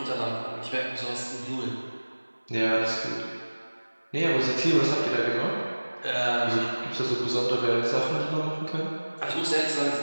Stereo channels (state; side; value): inverted; both; correlation -1.00